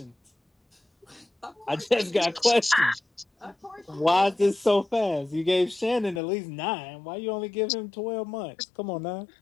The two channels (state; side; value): drops out; right; at 6.2 s